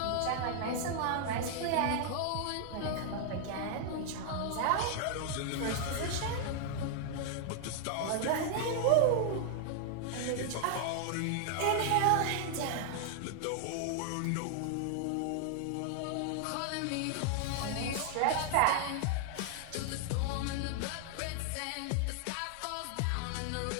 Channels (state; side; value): different; both; correlation 0.00